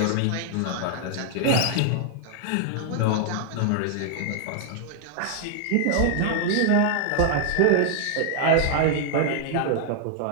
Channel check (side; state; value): both; different; correlation 0.00